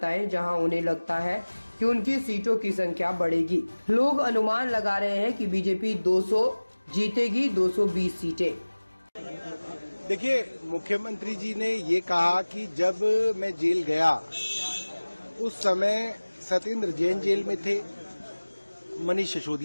जहां उन्हें लगता है कि उनकी सीटों की संख्या बढ़ेगी। लोग अनुमान लगा रहे हैं कि बीजेपी 200 जीतेगी, 220 सीटें। देखिए, मुख्यमंत्री जी ने ये कहा कि जब मैं जेल गया उस समय सत्येंद्र जैन जेल में थे, मनीष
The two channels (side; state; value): both; inverted; correlation -1.00